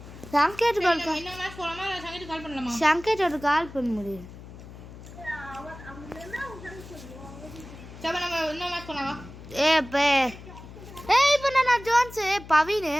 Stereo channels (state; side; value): noise; left; hum, 16 dB below the sound